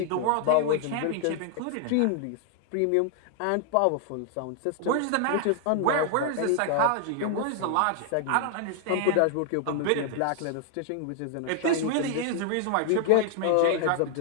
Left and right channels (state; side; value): different; both; correlation 0.00